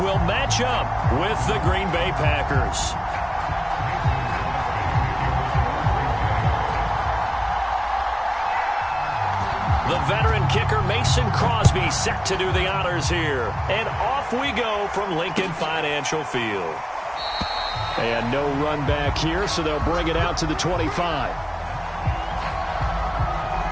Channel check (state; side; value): identical; both; correlation 1.00